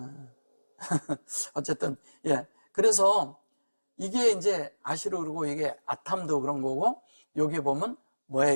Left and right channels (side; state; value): both; inverted; correlation -1.00